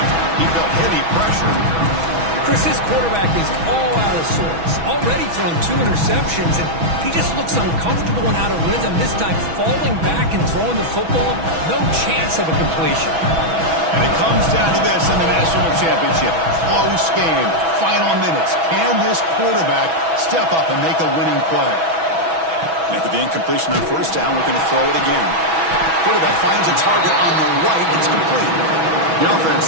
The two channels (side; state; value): left; late; 6.1 ms